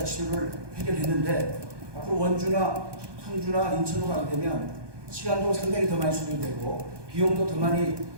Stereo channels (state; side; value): late; left; 1.2 ms